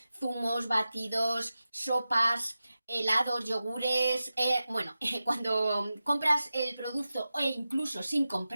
zumos, batidos, sopas, helados, yogures. Cuando compras el producto o incluso sin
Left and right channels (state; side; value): inverted; both; correlation -0.93